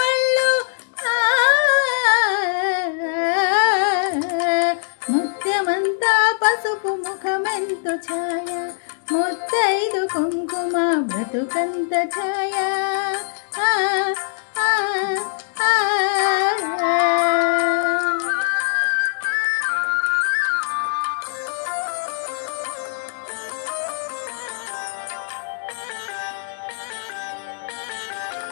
ముత్యమంతా పసుపు ముఖమెంతో ఛాయ ముత్తైదు కుంకుమ బ్రతుకంత ఛాయ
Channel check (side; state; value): right; silent; digital silence